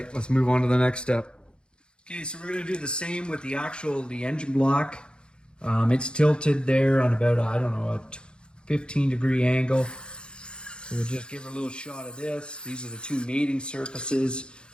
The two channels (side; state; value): right; late; 0.052 ms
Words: let's move on to the next step. Okay, so we're gonna do the same with the engine block. It's tilted there on about, I don't know, a 15-degree angle. So we'll just give her a little shot of this. These are the two mating surfaces.